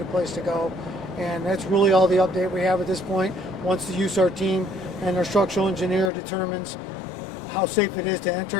a place to go. And that's really all the update we have at this point. Once the USAR team and our structural engineer determines how safe it is to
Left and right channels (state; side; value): drops out; right; at 6.1 s